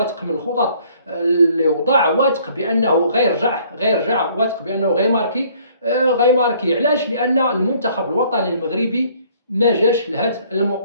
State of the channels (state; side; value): inverted; both; correlation -0.60